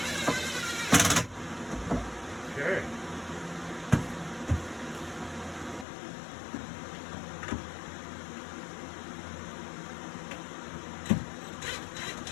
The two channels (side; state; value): right; drops out; at 5.9 s